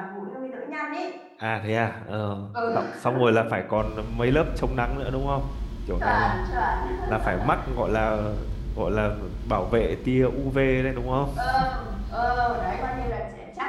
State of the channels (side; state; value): both; identical; correlation 1.00